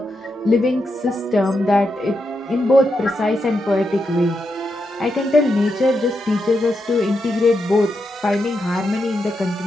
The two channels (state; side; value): normal; both; correlation 0.84